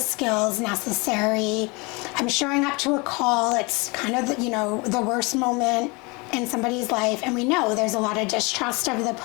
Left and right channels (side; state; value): right; quieter; 27.7 dB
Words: necessary. I'm showing up to a call. It's kind of, you know, the worst moment in somebody's life, and we know there's a lot of distrust of the